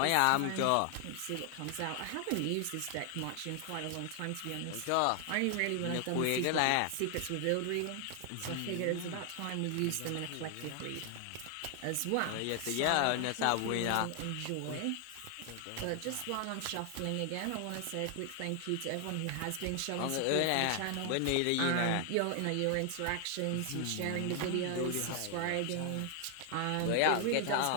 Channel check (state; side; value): different; both; correlation 0.00